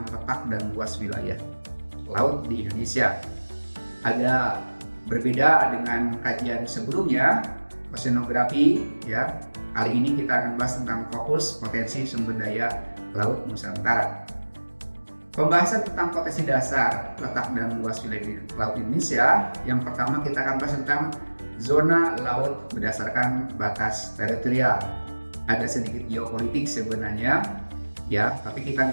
letak dan luas wilayah laut di Indonesia. Agak berbeda dengan kajian sebelumnya, oceanografi ya. Kali ini kita akan bahas tentang fokus potensi sumber daya Laut Nusantara. Pembahasan tentang potensi dasar, letak dan luas wilayah laut Indonesia. Yang pertama kita akan bahas tentang zona laut berdasarkan batas teritorial. Ada sedikit geopolitik sebenarnya ya, tapi kita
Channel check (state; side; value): inverted; both; correlation -1.00